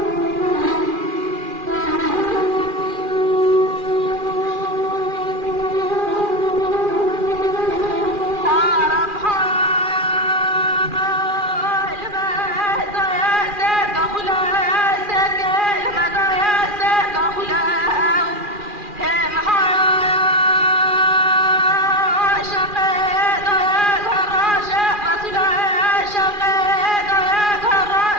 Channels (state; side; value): late; left; 2.4 ms